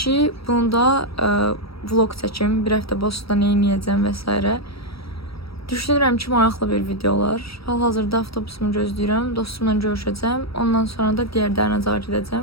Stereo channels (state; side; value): late; right; 0.76 ms